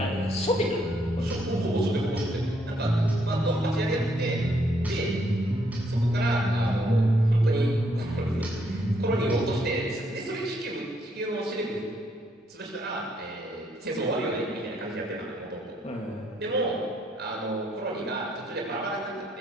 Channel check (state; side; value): normal; both; correlation 0.72